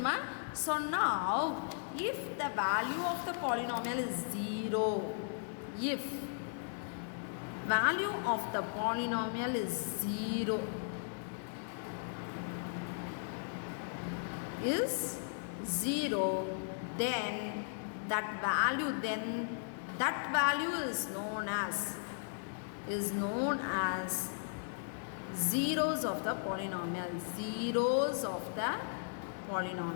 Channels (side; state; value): right; silent; digital silence